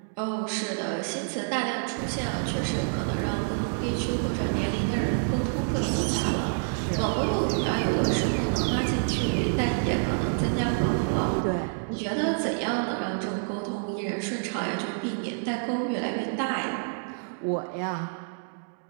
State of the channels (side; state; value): left; silent; digital silence